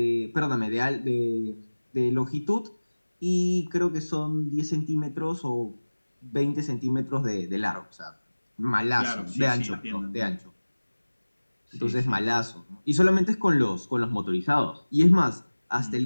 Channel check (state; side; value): inverted; both; correlation -1.00